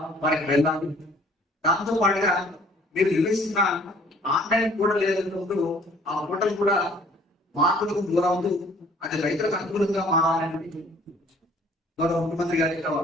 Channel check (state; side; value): normal; both; correlation 0.56